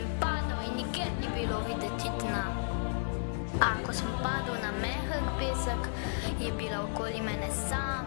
padal in nikjer ni bilo videti dna. A ko sem padel na mehek pesek, je bila okoli mene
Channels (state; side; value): silent; right; digital silence